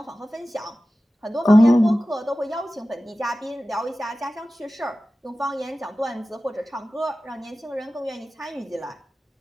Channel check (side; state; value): both; normal; correlation 0.95